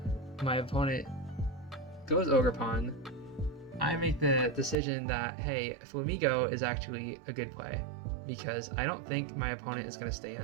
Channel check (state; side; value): drops out; left; at 4.8 s